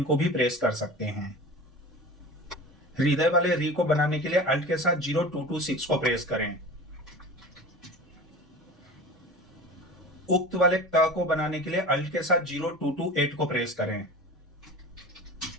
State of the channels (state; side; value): normal; both; correlation 0.35